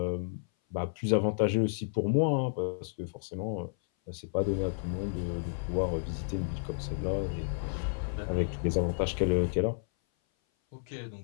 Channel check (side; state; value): right; silent; 56 dB below the other